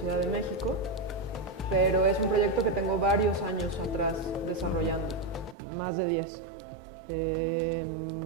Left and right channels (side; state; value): left; drops out; at 5.6 s